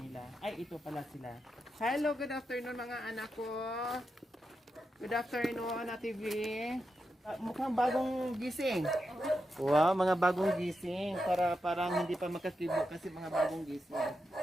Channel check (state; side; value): normal; both; correlation 0.87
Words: Ay, ito pala sila. Hello, good afternoon mga anak ko. Good afternoon, Ate V. Mukhang bagong gising. Wow, mga bagong gising. Parang hindi pa makakibo kasi mga bagong gising.